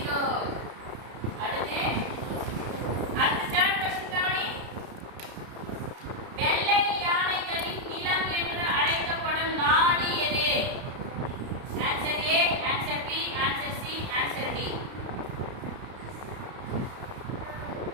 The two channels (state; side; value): late; left; 32 ms